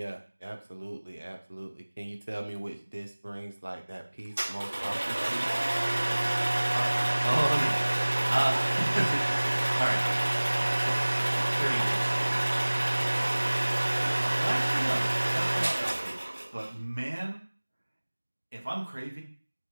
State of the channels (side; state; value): both; inverted; correlation -1.00